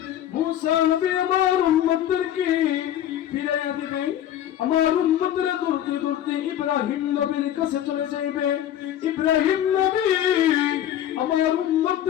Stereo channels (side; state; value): right; quieter; 11.3 dB